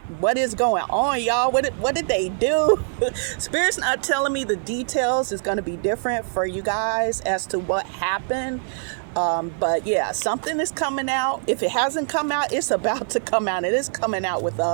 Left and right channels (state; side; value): silent; left; digital silence